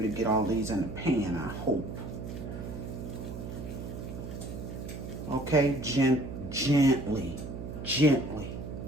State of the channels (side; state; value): right; noise; hum, 8 dB below the sound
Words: to get all these in the pan, I hope. Okay, gently.